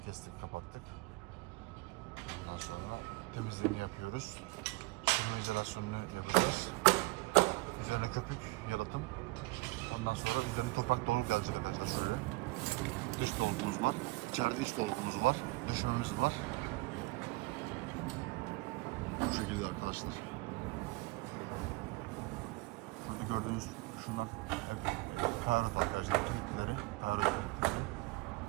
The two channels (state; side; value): quieter; left; 23.5 dB